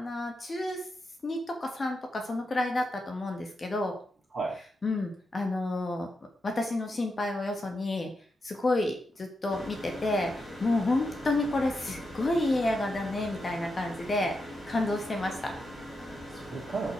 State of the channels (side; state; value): both; normal; correlation 0.86